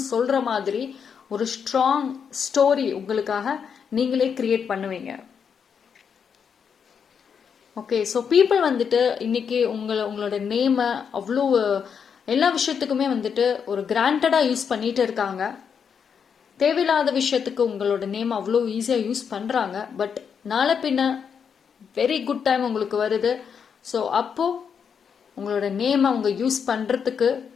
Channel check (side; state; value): right; quieter; 6.9 dB